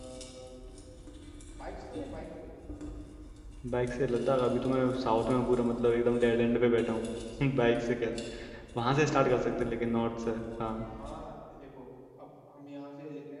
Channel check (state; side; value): identical; both; correlation 1.00